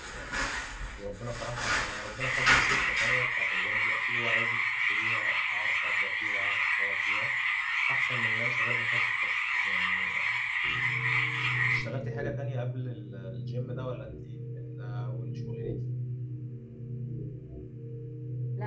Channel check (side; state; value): both; identical; correlation 1.00